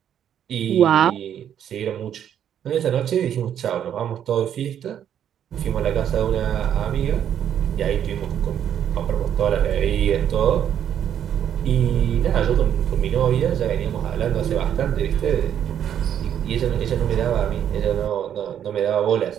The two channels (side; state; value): left; quieter; 9.6 dB